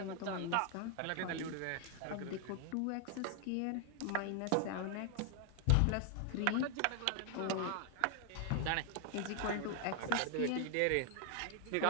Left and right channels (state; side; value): different; both; correlation 0.00